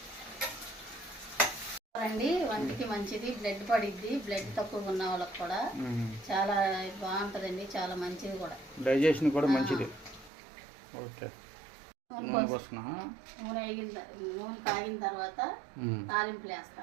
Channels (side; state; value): left; drops out; at 10.3 s